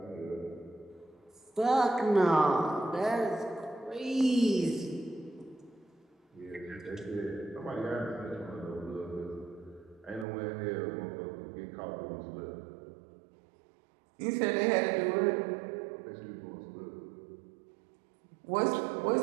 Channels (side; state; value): left; drops out; at 10.2 s